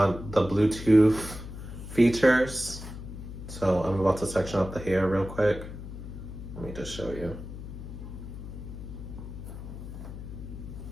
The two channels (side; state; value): left; noise; hum, 10 dB below the sound